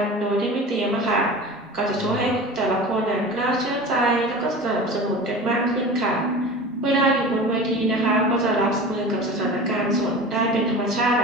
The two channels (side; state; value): both; normal; correlation 0.34